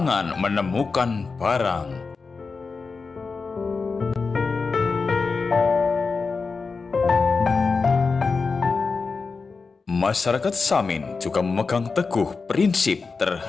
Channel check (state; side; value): quieter; right; 4.5 dB